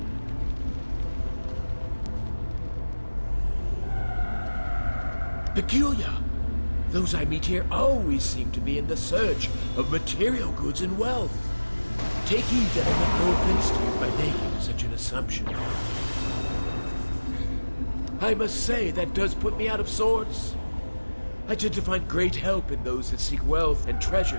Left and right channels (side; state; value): both; inverted; correlation -1.00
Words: Peculiar. Those I meet here always seem to be in the search of material goods and wealth. Take heed that I make no offense to you by making such an assumption. I must say that does put me out of sorts. I tend to find great help in those that seek wealth and